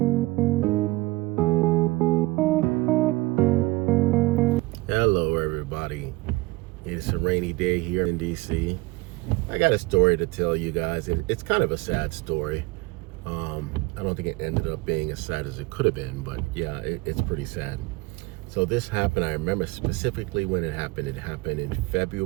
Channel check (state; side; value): quieter; left; 21.7 dB